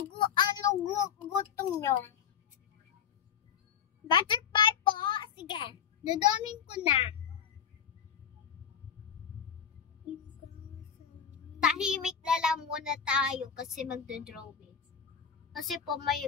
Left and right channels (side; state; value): right; quieter; 8.0 dB